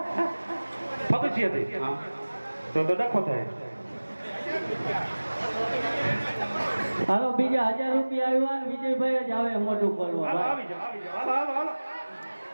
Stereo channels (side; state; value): both; inverted; correlation -1.00